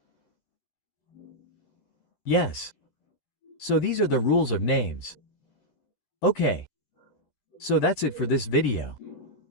Yes. So these are the rules of names. Okay. So that's it for this video.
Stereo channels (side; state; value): right; late; 11 ms